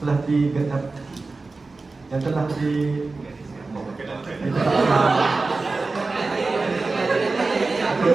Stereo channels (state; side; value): quieter; left; 3.7 dB